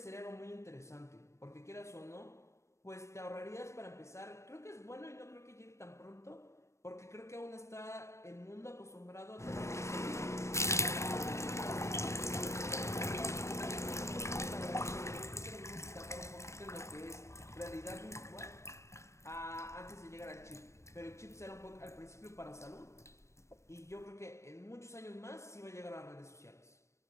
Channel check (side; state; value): right; late; 0.14 ms